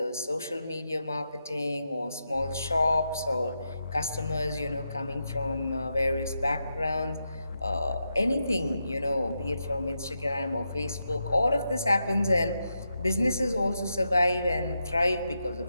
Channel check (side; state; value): both; inverted; correlation -0.85